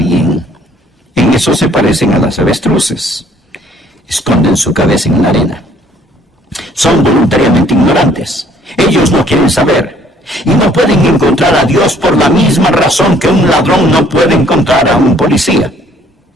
En eso se parecen a las avestruces. Esconden su cabeza en la arena. Son voluntariamente ignorantes. Ellos no quieren saber. Y no pueden encontrar a Dios por la misma razón que un ladrón no puede encontrar a un policía.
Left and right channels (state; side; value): normal; both; correlation 0.61